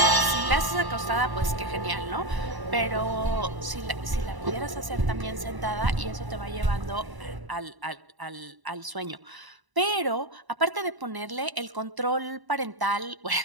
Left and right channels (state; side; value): late; left; 1.0 ms